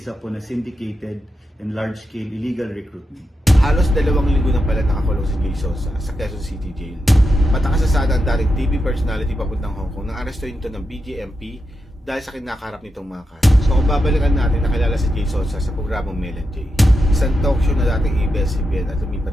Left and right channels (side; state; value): both; normal; correlation 0.87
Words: po na syndicated and large-scale illegal recruitment. Halos 2 linggo na pala nakakulong si Jason sa Quezon City Jail. Matakasasada ang dating TV personality papuntang Hong Kong nang arestuhin ito ng BJMP dahil sa kinakaharap nitong mga kaso. So kung babalikan natin, nakilala si Jason sa programang Mel and Jay, isang talk show na dating ABS-CBN at